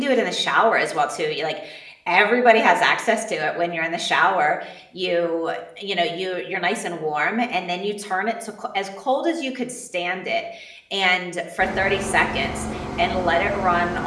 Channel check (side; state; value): both; identical; correlation 1.00